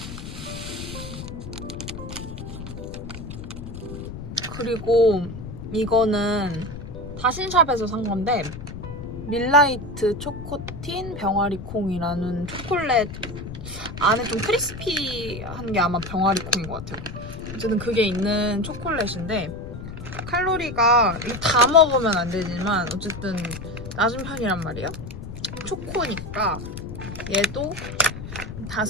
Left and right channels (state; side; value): noise; left; rumble, 10 dB below the sound